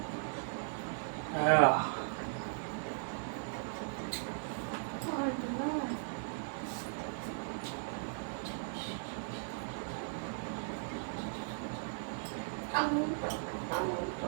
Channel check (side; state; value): left; silent; 53 dB below the other